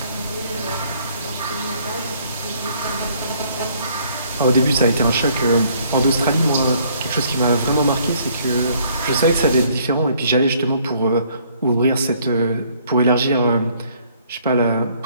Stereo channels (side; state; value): both; inverted; correlation -0.63